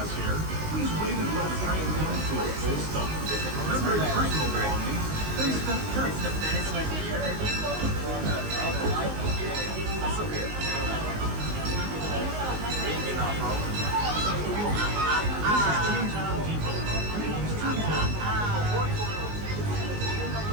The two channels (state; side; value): late; left; 19 ms